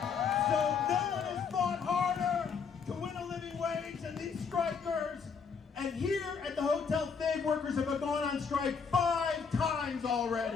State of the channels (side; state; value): right; quieter; 6.0 dB